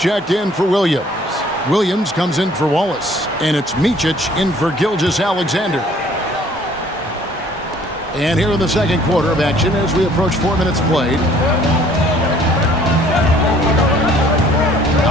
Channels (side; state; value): both; normal; correlation 0.57